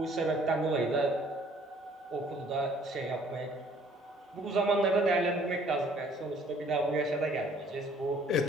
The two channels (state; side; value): normal; both; correlation 0.58